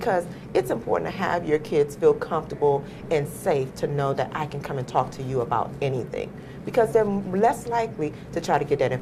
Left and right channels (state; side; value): identical; both; correlation 1.00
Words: it's important to have your kids feel comfortable and safe to know that I can come and talk to you about anything, because they're less likely to try to get that